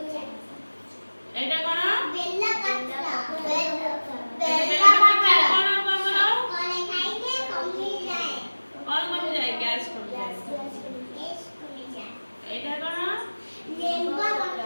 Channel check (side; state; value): both; inverted; correlation -1.00